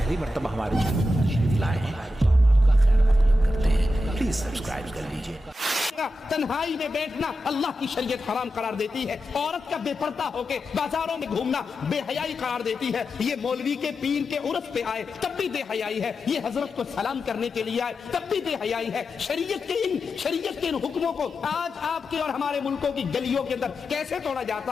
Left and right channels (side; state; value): both; normal; correlation 0.89